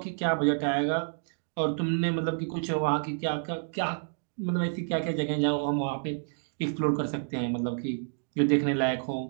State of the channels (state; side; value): silent; left; digital silence